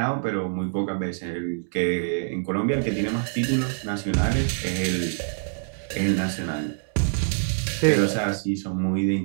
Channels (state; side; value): silent; left; digital silence